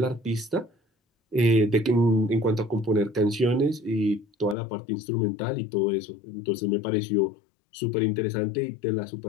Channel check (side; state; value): right; drops out; at 4.5 s